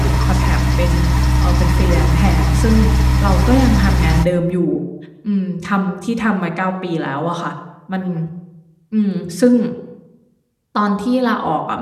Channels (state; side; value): identical; both; correlation 1.00